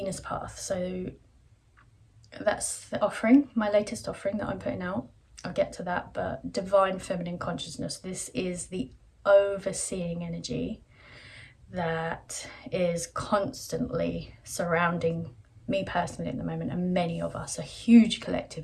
path. So that's the offering, my latest offering that I'm putting out. I'll get to that, but divine feminine consciousness, this is the overseeing energy that is constantly surrounding me personally at the moment, and many of us, a huge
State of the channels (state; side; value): identical; both; correlation 1.00